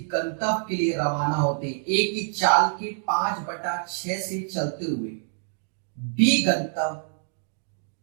गंतव्य के लिए रवाना होते हैं। ए की चाल के 5/6 से चलते हुए बी गंतव्य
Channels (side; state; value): left; silent; digital silence